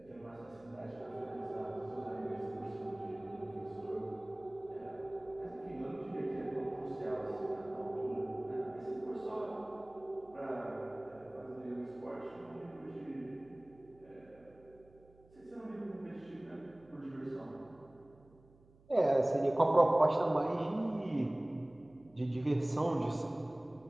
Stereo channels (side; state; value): right; noise; hum, 27 dB below the sound